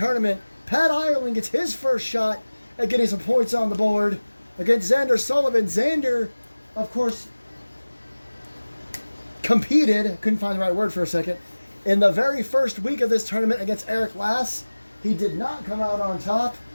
Pat Ireland gets his first shot at getting some points on the board against Xander Sullivan. Xander, of course, competed, couldn't find the right word for a second, in the very first week of this tournament against Eric Lass. He did not come out on top.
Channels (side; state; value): both; inverted; correlation -1.00